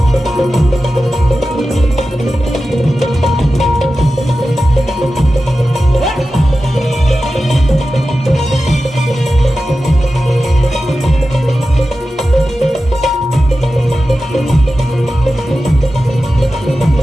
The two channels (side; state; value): both; normal; correlation 0.93